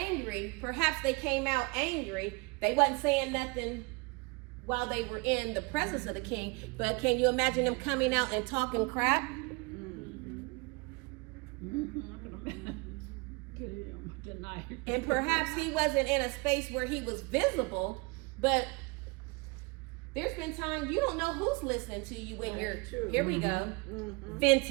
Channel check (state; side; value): quieter; left; 27.6 dB